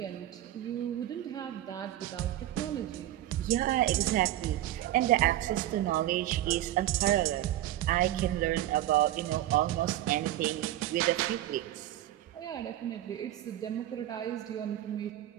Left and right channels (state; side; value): quieter; left; 13.7 dB